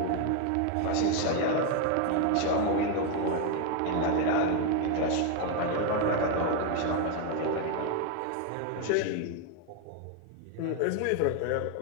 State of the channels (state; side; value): different; both; correlation 0.01